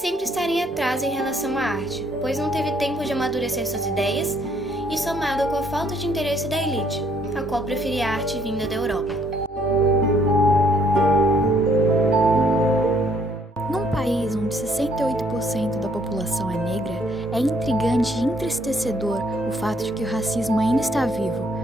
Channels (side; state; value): both; normal; correlation 0.66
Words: estar em atraso em relação à arte, pois não teve tempo de amadurecer suas ideias e somado com a falta de interesse da elite, a qual preferia a arte vinda da Europa. Num país onde 68% da população é negra, é intrigante e entristecedor o fato de que o racismo ainda está vivo,